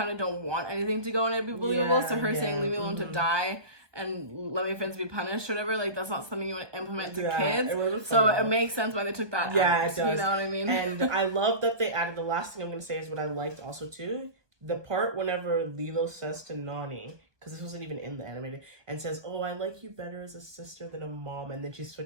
of don't want anything to go and it be believable. So her saying leave me alone to die and let my friends be punished or whatever, like that's not something you want to implement to kids. So it makes sense why they took that out. It does. You know what I mean? And I love that they added, the last thing I'm going to say is what I liked also too, the part whenever Lilo says to Nani, because this wasn't even in the animated, and says, oh, I like you better as a sister than a mom, and then she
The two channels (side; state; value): left; late; 1.2 ms